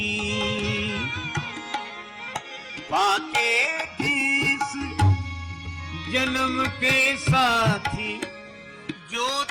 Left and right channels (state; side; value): identical; both; correlation 1.00